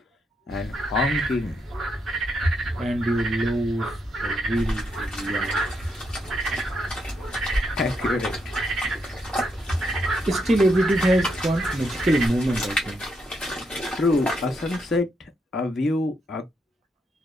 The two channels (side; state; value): both; normal; correlation 0.79